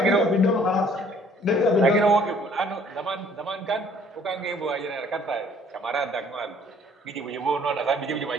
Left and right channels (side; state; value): both; normal; correlation 0.59